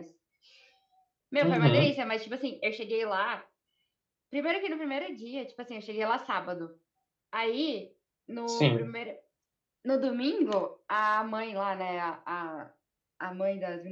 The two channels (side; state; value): both; identical; correlation 1.00